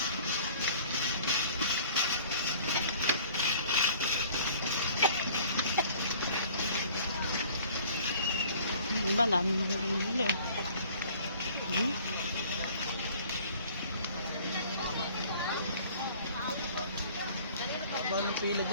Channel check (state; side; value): inverted; both; correlation -0.51